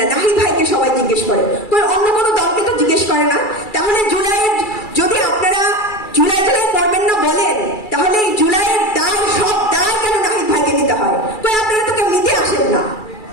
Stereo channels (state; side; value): late; right; 2.3 ms